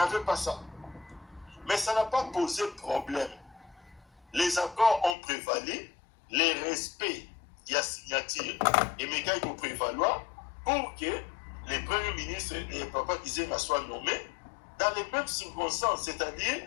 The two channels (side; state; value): right; drops out; at 5.2 s